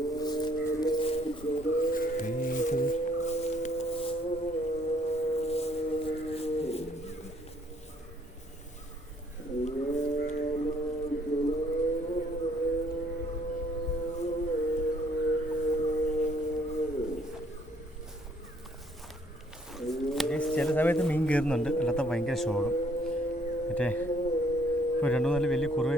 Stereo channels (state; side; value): normal; both; correlation 0.65